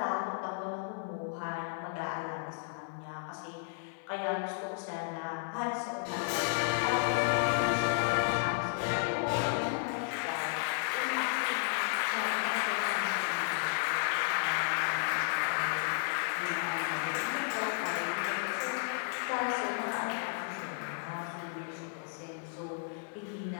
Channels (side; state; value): right; silent; digital silence